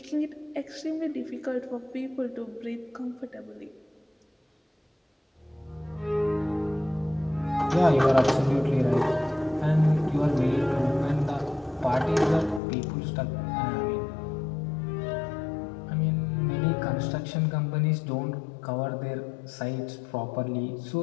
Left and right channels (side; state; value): right; drops out; at 12.6 s